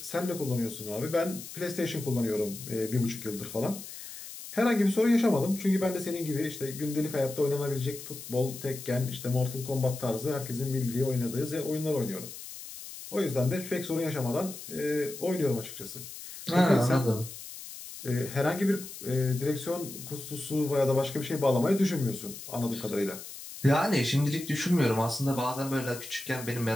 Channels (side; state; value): left; noise; hiss, 12 dB below the sound